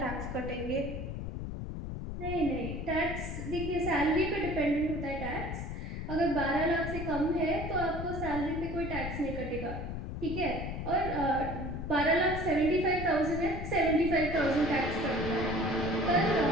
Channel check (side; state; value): left; noise; rumble, 6 dB below the sound